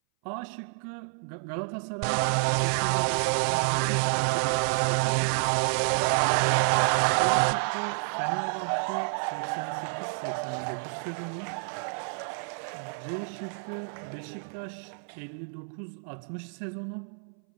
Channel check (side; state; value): left; silent; 59 dB below the other